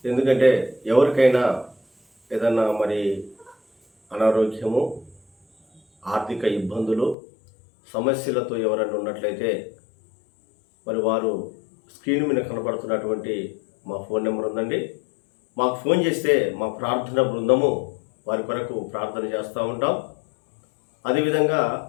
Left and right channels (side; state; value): right; drops out; at 7.2 s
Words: ఎందుకంటే ఎవరికైనా ఏదన్నా మరి అనారోగ్యము, ఆర్థిక ఇబ్బందులు, సమస్యలతో ఎవరైనా ఉన్నట్లయితే మరి వారు స్క్రీన్ మీద కనపడుతున్నటువంటి మా ఫోన్ నెంబర్ ఉందండి. మాకు ఫోన్ చేస్తే మా ప్రార్థన బృందము వారి కొరకు ప్రార్థన చేస్తూ ఉంటాం. అదేవిధంగా